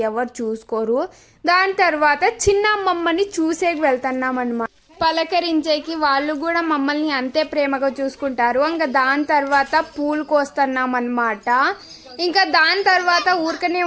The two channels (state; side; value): identical; both; correlation 1.00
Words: ఎవరు చూసుకోరు. దాని తర్వాత చిన్న అమ్మమ్మని చూసేకి వెళ్తున్నామన్నమాట, పలకరించేకి. వాళ్ళు కూడా మమ్మల్ని అంతే ప్రేమగా చూసుకుంటారు. ఇంకా దాని తర్వాత పూలు కోస్తున్నాం అన్నమాట. ఇంకా దాని తర్వాత ఊరికనే